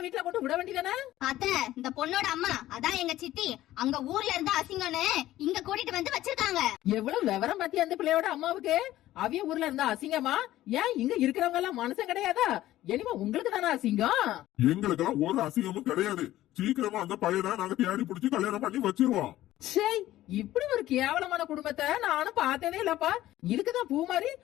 வீட்டுல கொண்டு விட வேண்டியதானே? அத்தை, இந்த பொண்ணோட அம்மா, அதான் எங்க சித்தி, அங்க ஊர்ல இருந்து அசிங்கம்னு இங்க கூட்டிட்டு வந்து வச்சிருக்காங்க. எவ்வளவு விவரம் பத்தி அந்த பிள்ளையோட அம்மாவுக்கு. அவிய ஊர்ல இருந்தா அசிங்கமா? ஏன் இங்க இருக்கிறவங்க எல்லாம் மனுஷன் கிடையாதா? இனிமே உங்களுக்கு தானே அசிங்கம். எங்களுக்கெல்லாம் ஒரு அசிங்கமும் கிடையாது. சீக்கிரமா அந்த பையனை நாங்க தேடி பிடிச்சி கல்யாணம் பண்ணி வச்சிருவோம். சே, இப்படி ஒரு கேவலமான குடும்பத்தை நானும் பார்த்ததே இல்லப்பா. இதுக்குதான் பூமாரி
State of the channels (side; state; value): right; quieter; 14.7 dB